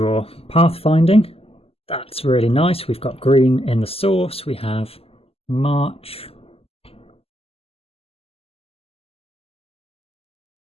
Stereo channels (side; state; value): right; late; 0.28 ms